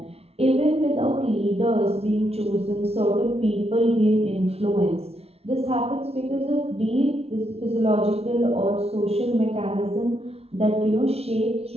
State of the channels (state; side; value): late; left; 0.30 ms